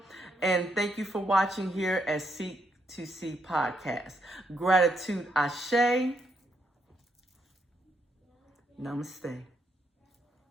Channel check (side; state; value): both; normal; correlation 0.77